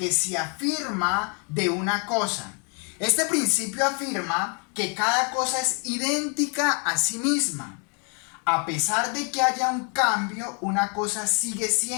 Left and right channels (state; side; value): quieter; right; 37.7 dB